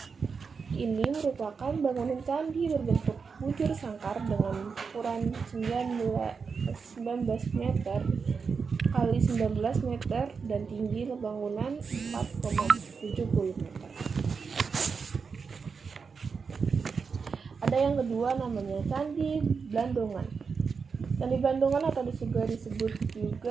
ini merupakan bangunan candi berbentuk bujur sangkar dengan ukuran 19 meter kali 19 meter dan tinggi bangunan 4,70 meter. Ada yang kedua namanya Candi Blandongan. Candi Blandongan atau juga disebut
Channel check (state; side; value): quieter; left; 5.4 dB